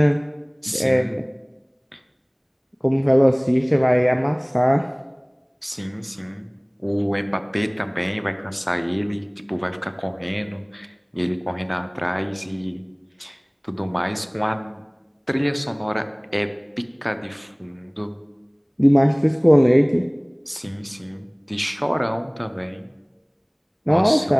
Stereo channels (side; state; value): both; identical; correlation 1.00